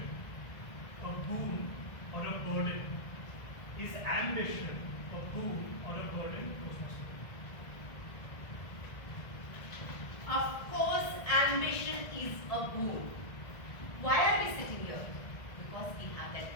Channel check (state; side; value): late; right; 1.8 ms